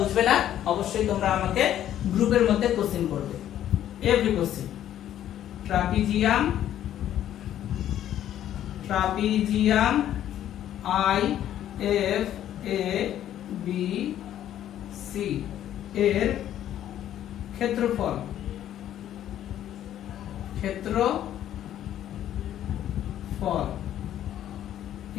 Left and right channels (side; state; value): right; quieter; 11.4 dB